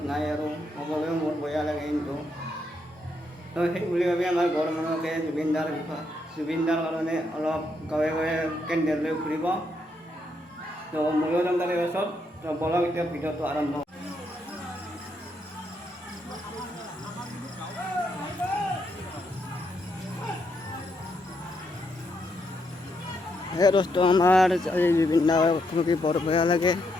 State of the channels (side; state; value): both; normal; correlation 0.78